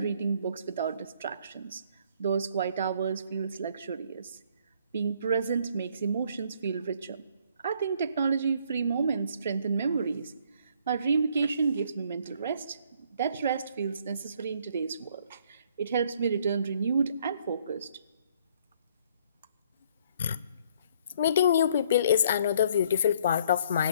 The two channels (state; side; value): inverted; both; correlation -0.63